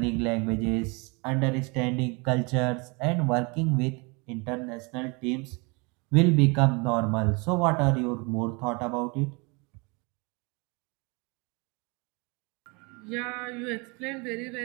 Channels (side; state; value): left; quieter; 29.6 dB